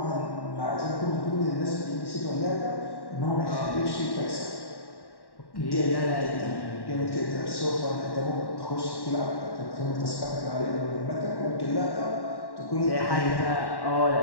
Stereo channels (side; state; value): right; late; 1.1 ms